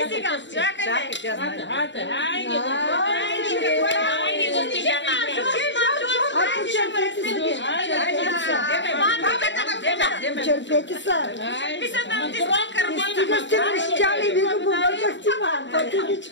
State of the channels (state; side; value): late; right; 0.53 ms